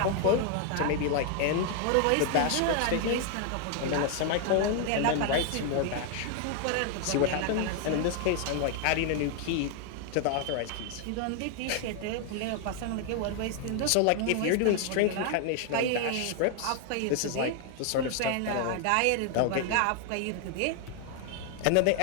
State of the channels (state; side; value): different; both; correlation 0.00